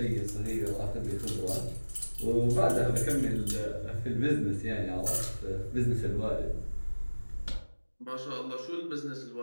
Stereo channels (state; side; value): inverted; both; correlation -1.00